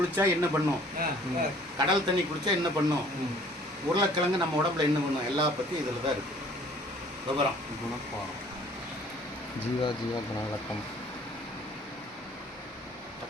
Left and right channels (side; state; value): both; normal; correlation 0.54